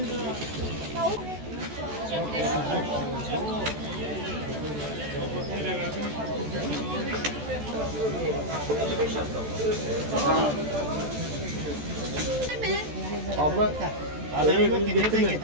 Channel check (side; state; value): left; late; 14 ms